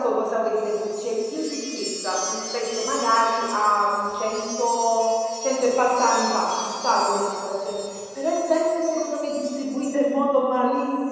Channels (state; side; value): identical; both; correlation 1.00